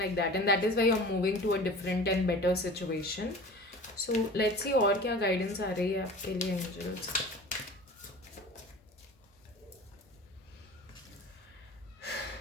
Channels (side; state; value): both; normal; correlation 0.39